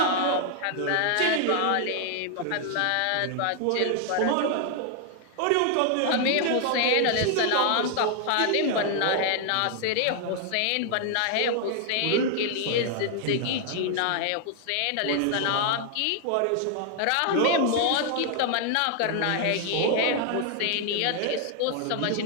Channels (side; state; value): both; different; correlation 0.00